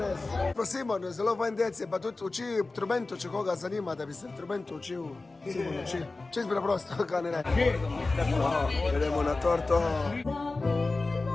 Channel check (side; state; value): right; quieter; 3.4 dB